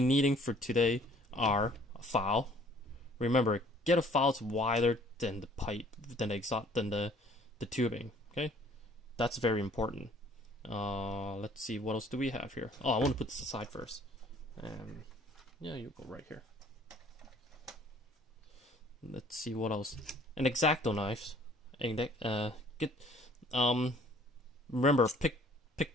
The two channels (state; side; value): normal; both; correlation 0.56